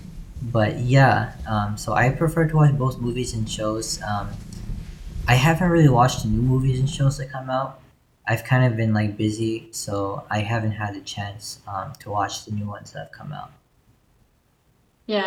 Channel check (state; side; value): identical; both; correlation 1.00